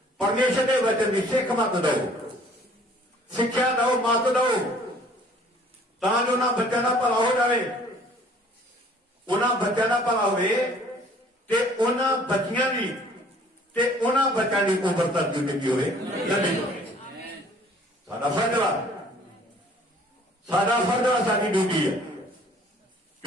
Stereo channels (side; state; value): both; normal; correlation 0.55